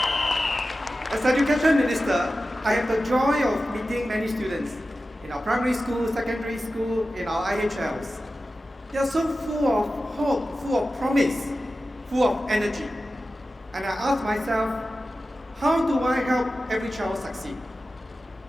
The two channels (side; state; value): both; normal; correlation 0.94